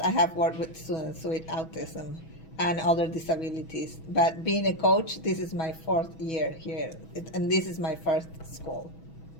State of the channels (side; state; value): right; late; 6.2 ms